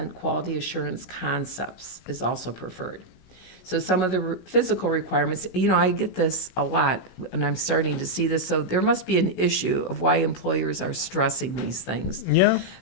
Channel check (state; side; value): late; right; 16 ms